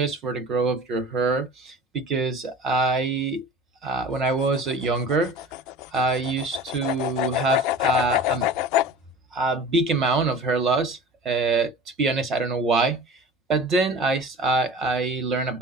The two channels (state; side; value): normal; both; correlation 0.38